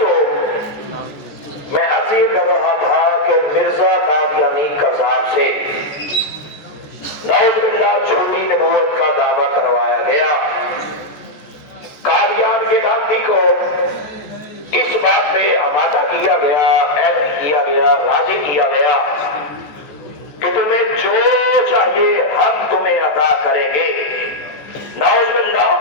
میں عرض یہ کر رہا تھا کہ مرزا قادیانی کذاب سے نعوذ باللہ جھوٹی نبوت کا دعویٰ کروایا گیا۔ قادیان کے لعنتی کو اس بات پہ آمادہ کیا گیا، ایڈی کیا گیا، راضی کیا گیا کہ تمہیں جو چاہیے ہم تمہیں عطا کریں گے۔ نعوذ باللہ،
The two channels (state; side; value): late; right; 14 ms